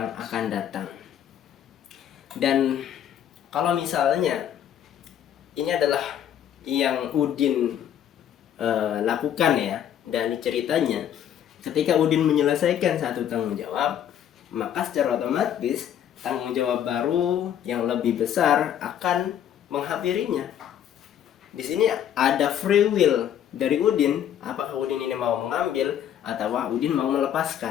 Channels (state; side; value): quieter; right; 10.1 dB